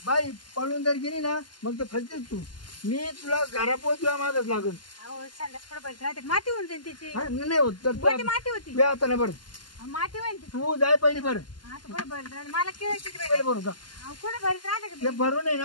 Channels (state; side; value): late; right; 0.71 ms